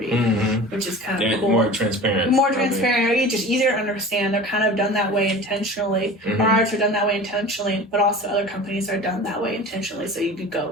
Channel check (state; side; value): normal; both; correlation 0.37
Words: which is kind of cool. More transparent. Just easier to understand. They're kind of done that way intentionally. Ours are done that way intentionally, but also other companies are done that way intentionally. So you could